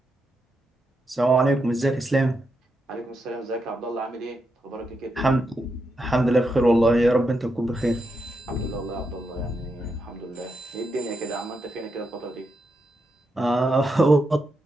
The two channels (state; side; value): normal; both; correlation 0.84